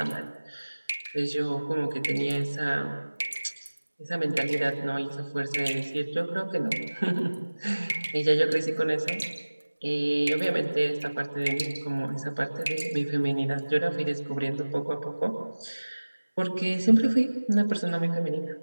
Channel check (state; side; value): inverted; both; correlation -1.00